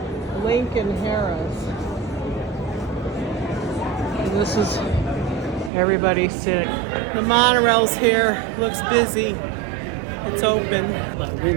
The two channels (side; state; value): left; drops out; at 5.7 s